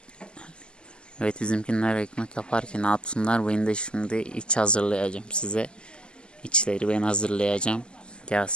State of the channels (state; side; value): late; right; 0.049 ms